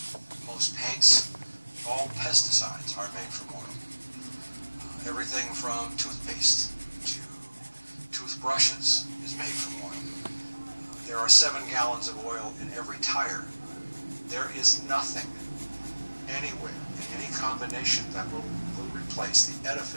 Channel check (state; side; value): inverted; both; correlation -1.00